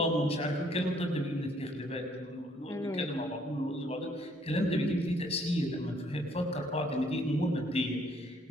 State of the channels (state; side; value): normal; both; correlation 0.65